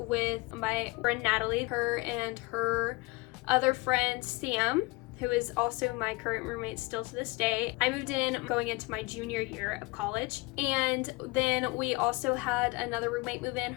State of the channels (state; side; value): quieter; right; 24.2 dB